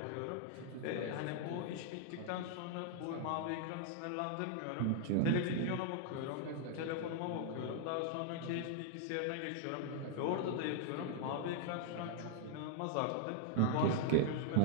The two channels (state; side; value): different; both; correlation -0.01